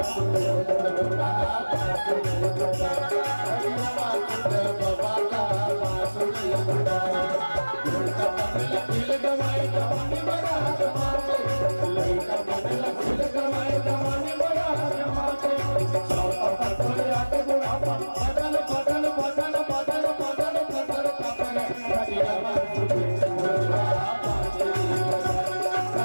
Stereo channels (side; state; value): both; inverted; correlation -1.00